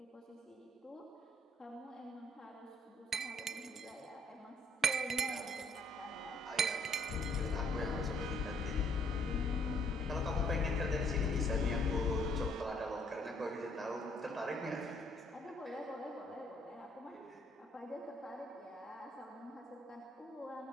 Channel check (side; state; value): both; normal; correlation 0.65